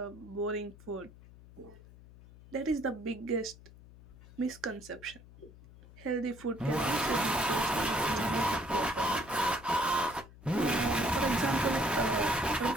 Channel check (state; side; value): noise; left; hum, 21 dB below the sound